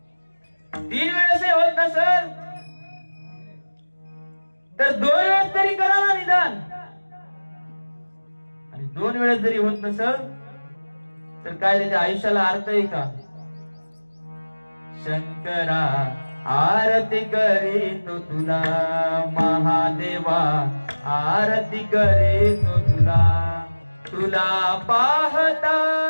3 वेळेस होत नसेल तर 2 वेळेस तरी करा ना निदान. आणि 2 वेळेस जरी होत नसेल तर काय त्याच्या आयुष्याला अर्थ आहे का? शंकरा आरती करीतो तुला, महादेवा आरती करीतो तुला. तुला पाहता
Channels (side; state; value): both; inverted; correlation -1.00